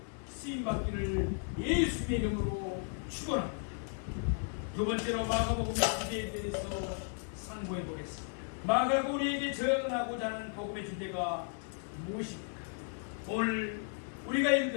쓰임받기를 예수님의 이름으로 축원합니다. 두 번째로 마가복음의 주제에 대해서 상고해 보겠습니다. 마가가 우리에게 전하고자 하는 복음의 주제가 무엇입니까? 오늘 우리가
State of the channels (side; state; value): right; silent; 55 dB below the other